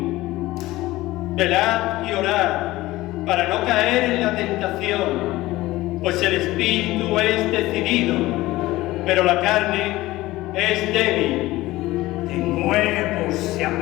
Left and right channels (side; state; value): right; quieter; 18.0 dB